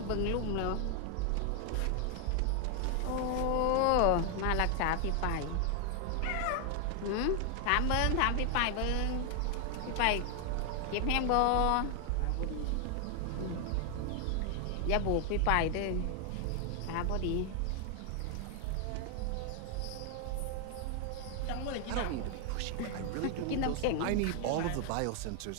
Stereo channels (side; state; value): both; different; correlation 0.01